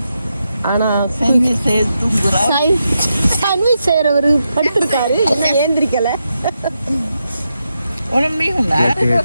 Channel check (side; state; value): both; inverted; correlation -0.86